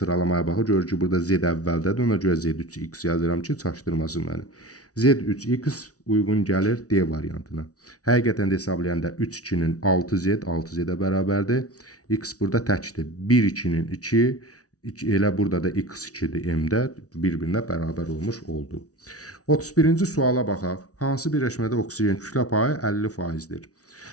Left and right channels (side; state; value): right; late; 0.67 ms